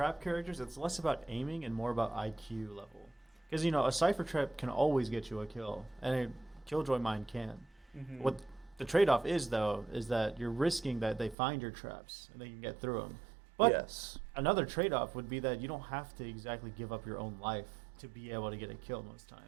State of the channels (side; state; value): left; drops out; at 11.4 s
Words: characters, it's less about aiming and more about IQ level. Because, a Cypher trap can always get you a kill, and a Killjoy mine can. What the trade-off is, though, is that you're risking that they find your traps and they can get through them. But Yes. another trade-off would be that you don't have to exactly give up your own life to be able to get a kill most